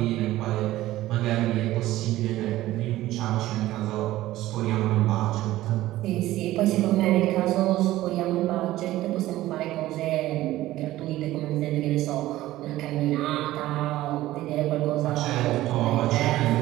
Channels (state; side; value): quieter; left; 15.8 dB